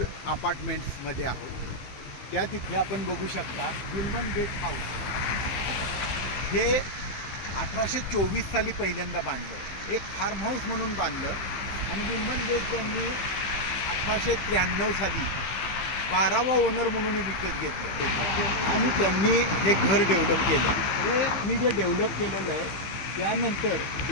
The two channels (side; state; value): right; late; 15 ms